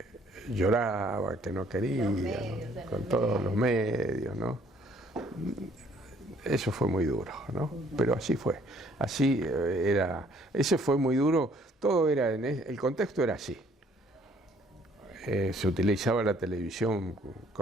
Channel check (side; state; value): both; normal; correlation 0.61